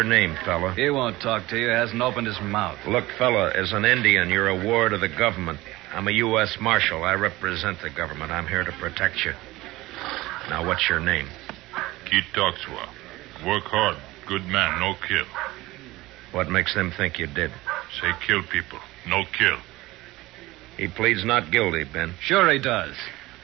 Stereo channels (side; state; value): left; quieter; 19.0 dB